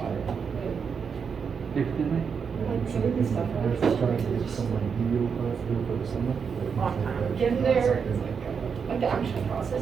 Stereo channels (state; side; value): quieter; left; 6.3 dB